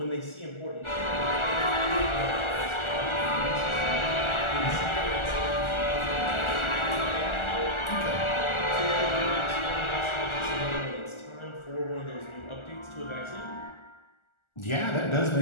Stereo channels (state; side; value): late; right; 1.4 ms